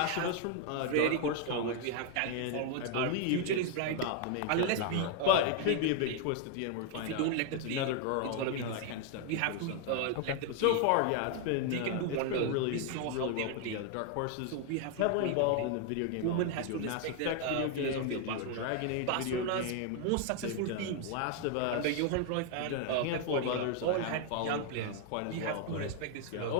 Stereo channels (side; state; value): both; different; correlation 0.00